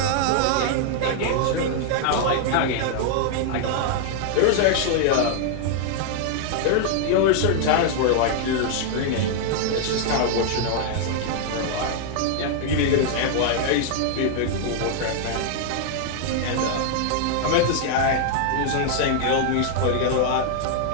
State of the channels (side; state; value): both; different; correlation 0.00